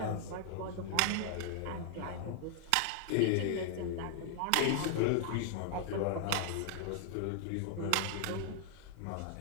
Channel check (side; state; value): both; different; correlation 0.00